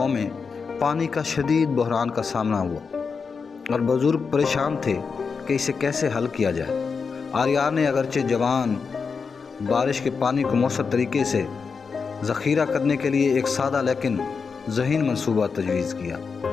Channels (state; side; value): quieter; right; 5.3 dB